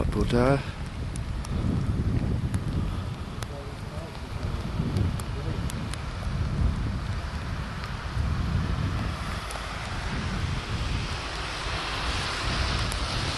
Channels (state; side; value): identical; both; correlation 1.00